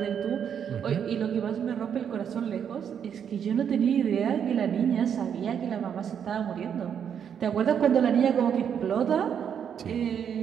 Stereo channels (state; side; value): quieter; left; 8.1 dB